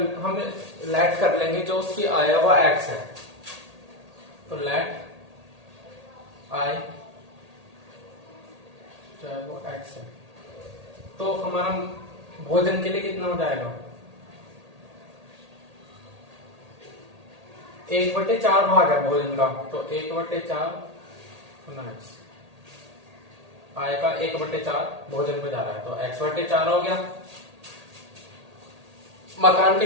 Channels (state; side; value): late; left; 1.8 ms